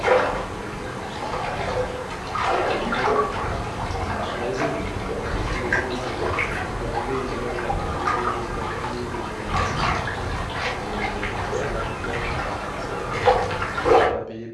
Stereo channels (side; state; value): both; identical; correlation 1.00